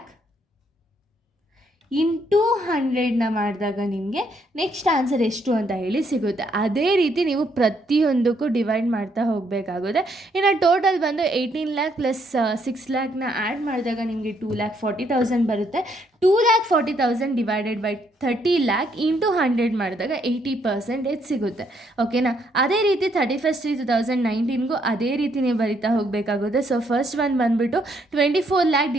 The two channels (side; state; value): both; normal; correlation 0.72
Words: into 100ನ ಮಾಡಿದಾಗ ನಿಮಗೆ ನೆಕ್ಸ್ಟ್ ಆನ್ಸರ್ ಎಷ್ಟು ಅಂತ ಹೇಳಿ ಸಿಗುತ್ತೆ. ಅದೇ ರೀತಿ ನೀವು ಪ್ರತಿಯೊಂದಕ್ಕೂ ಡಿವೈಡ್ ಮಾಡ್ತಾ ಹೋಗಬೇಕಾಗುತ್ತೆ. ಇನ್ನು ಟೋಟಲ್ ಬಂದು 18 lakh ಪ್ಲಸ್ 6 lakhನ ಆ್ಯಡ್ ಮಾಡಿದಾಗ ನಿಮಗೆ 2,40,000 ಬರುತ್ತೆ. 2,40,000 ಡಿವೈಡೆಡ್ ಬೈ 30 lakh ಇಂಟು 100 ಮಾಡಿದಾಗ 80% ಸಿಗುತ್ತೆ. ಓಕೆನಾ. ಅದೇ ರೀತಿ 31/3/2019ಗೂ ಅದೇ ರೀತಿ ನೀವು ಬರಿತಾ ಹೋಗಬೇಕಾಗುತ್ತೆ. ಸೊ ಫಸ್ಟ್ ಒನ್ ಬಂದುಬಿಟ್ಟು 24 lakh